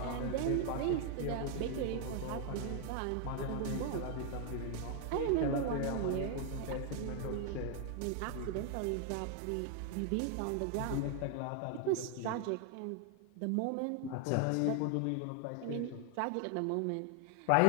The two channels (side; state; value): both; different; correlation 0.00